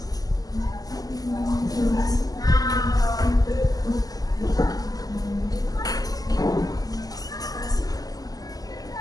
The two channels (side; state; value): right; late; 0.18 ms